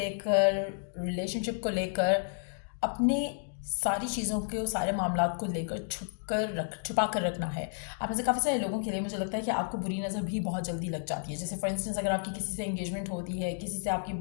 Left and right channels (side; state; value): right; silent; digital silence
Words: रिलेशनशिप को लेकर, अपने सारी चीज़ों के सारे मामला को लेकर छुपा कर रखना है। आप में से काफ़ी सारे लोगों के लिए मुझे लगता है कि आपको बुरी नज़र भी बहुत जल्दी लग जाती है। जैसे फॉर इंस्टेंस अगर आपकी किसी से एंगेजमेंट होती है, किसी से आपकी